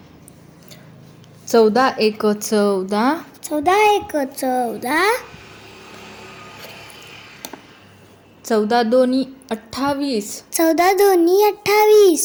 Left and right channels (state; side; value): identical; both; correlation 1.00